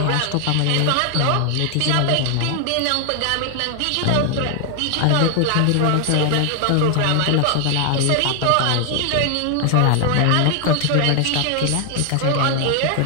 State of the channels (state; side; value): different; both; correlation 0.00